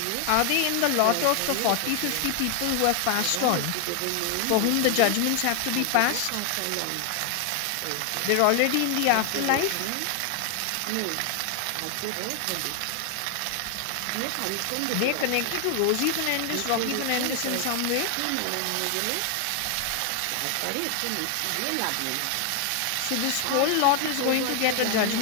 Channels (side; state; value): both; different; correlation 0.00